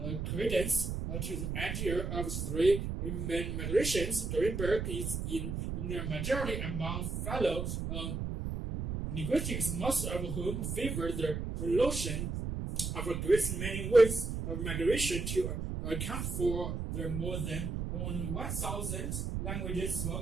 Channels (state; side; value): noise; right; rumble, 3 dB below the sound